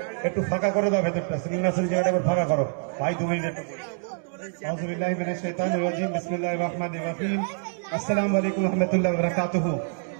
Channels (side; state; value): left; silent; 58 dB below the other